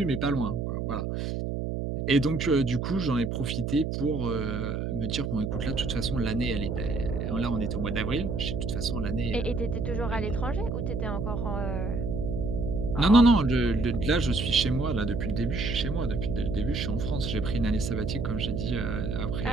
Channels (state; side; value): noise; right; hum, 2 dB below the sound